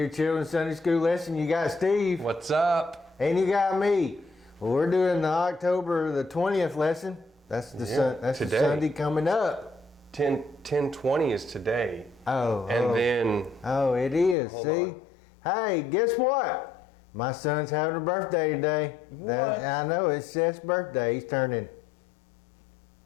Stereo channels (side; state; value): right; drops out; at 14.4 s